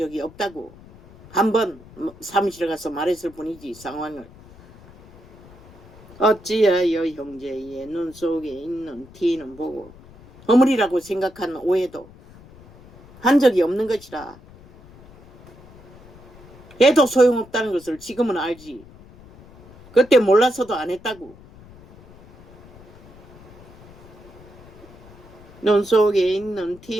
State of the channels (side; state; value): left; noise; rumble, 22 dB below the sound